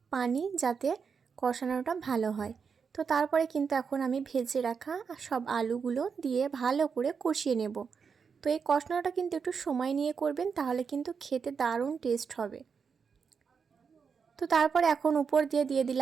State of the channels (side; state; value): left; quieter; 6.0 dB